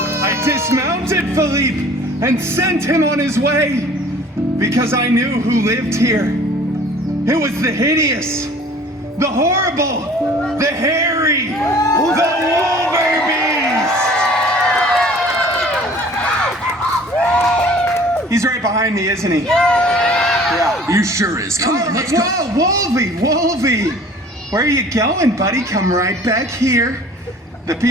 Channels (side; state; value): both; normal; correlation 0.49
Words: I dismounted Philippe and sent him on his way because I knew who lived here. It was the hideous, the horrible, the hairy, the Wolverbeast. He's right behind me, isn't he? Yeah. He sure is. Come on, let's go. Whoa, Wolvie. Where are you going, buddy? Come right back here. The